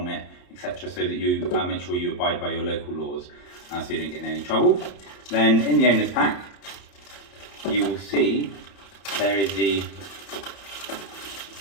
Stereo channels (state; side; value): late; right; 31 ms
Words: etc., so that you make sure you abide by your local laws so you don't get in any trouble. Then in the owner's pack, you will see there is the